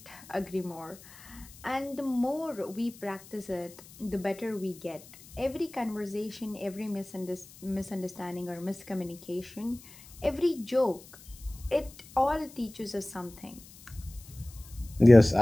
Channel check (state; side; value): noise; left; hiss, 20 dB below the sound